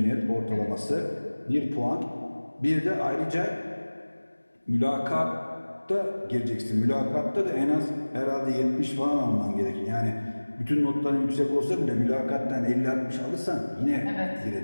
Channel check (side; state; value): both; inverted; correlation -1.00